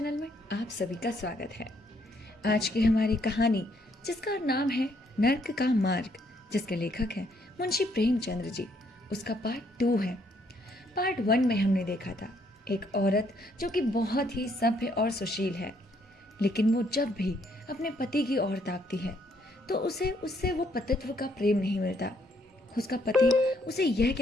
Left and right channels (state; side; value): normal; both; correlation 0.70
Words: में आप सभी का स्वागत है। आज की हमारी कहानी जिसका नाम है नर्क का मार्ग, जिसके लेखक हैं मुंशी प्रेमचंद्र जी, उसका पार्ट 2 है। पार्ट 1 में हमने देखा था एक औरत जो कि बहुत ही सभ्य और सुशील है, लेकिन वो जब भी अपने पति की ओर ताकती है तो उसे उससे वो पतित्व का प्रेम नहीं मिलता। उसका पति उसे यह